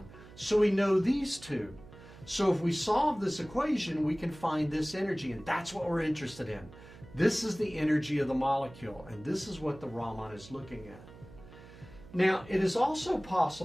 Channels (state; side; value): noise; right; hum, 19 dB below the sound